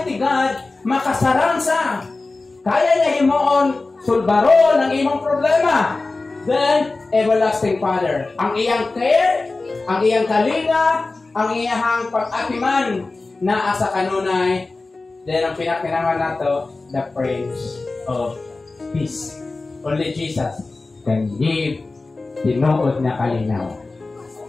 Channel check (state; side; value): quieter; right; 3.5 dB